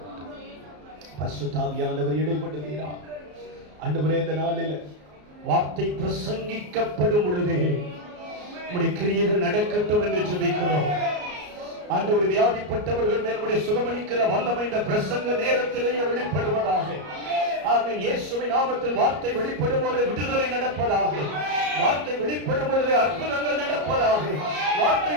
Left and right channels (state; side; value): late; left; 34 ms